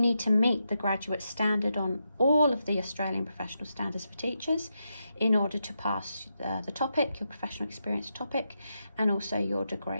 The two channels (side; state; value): both; inverted; correlation -0.85